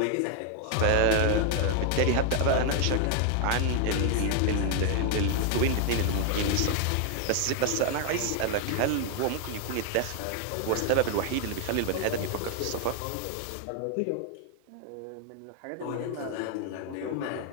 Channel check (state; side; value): different; both; correlation 0.00